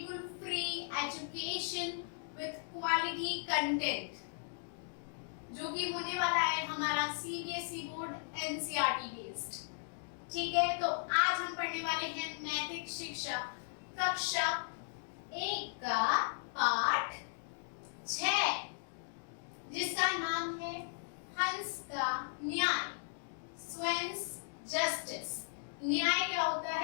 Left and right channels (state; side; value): silent; right; digital silence